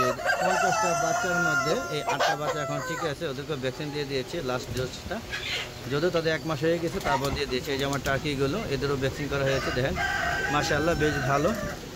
50টা বাচ্চার মধ্যে এই 8টা বাচ্চা এখন ঠিক আছে, ওদেরকে ভ্যাকসিন দিয়ে দিয়েছে লাস্ট ডোজটা, যদিও তাদের 1 মাস হয়ে গেছে, তারপর দিয়ে দিয়েছে। এই যে আমার টার্কিগুলো, এদেরও ভ্যাকসিন করা হয়েছে। দেখেন মাশাআল্লাহ বেশ ভালো।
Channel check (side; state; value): both; identical; correlation 1.00